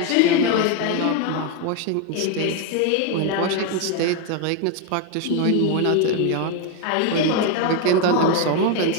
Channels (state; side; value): different; both; correlation 0.02